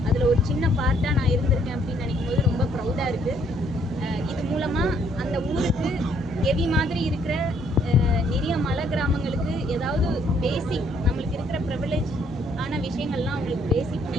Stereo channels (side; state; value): both; normal; correlation 0.67